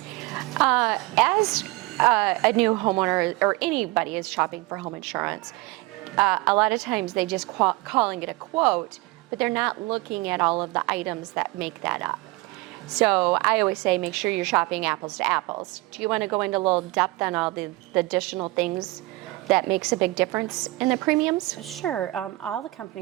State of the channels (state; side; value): quieter; left; 21.8 dB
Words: As a new homeowner, or anybody is shopping for home insurance, a lot of times they just calling it a quote, but they're not looking at all of the items that make that up. So I always say make sure you're shopping apples to apples. Do you want to go into a little depth on all the additional things that makes a big difference in the premiums? Sure. All the